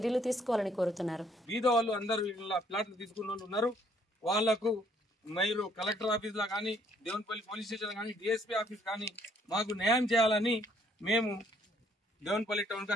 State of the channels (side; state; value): both; normal; correlation 0.65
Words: తీసుకోవాలని కోరుతున్నారు. వీధో వాళ్ళు అందరూ ప్లాట్లు తీసుకున్న వాళ్ళు ఉన్నారు. వాళ్లకు మీరు కలెక్టర్ ఆఫీస్ లో కానీ, దేవునిపల్లి పోలీస్ స్టేషన్ కానీ, డిఎస్పీ ఆఫీస్ కానీ మాకు న్యాయం చేయాలని మేము దేవునిపల్లి టౌన్ కి